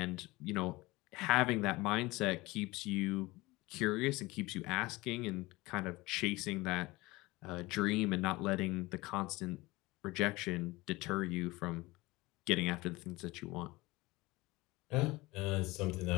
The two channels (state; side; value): quieter; right; 21.3 dB